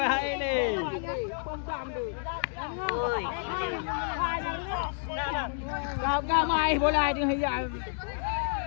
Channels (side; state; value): right; silent; digital silence